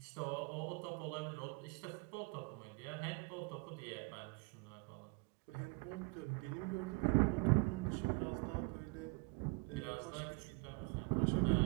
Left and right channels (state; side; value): quieter; left; 29.9 dB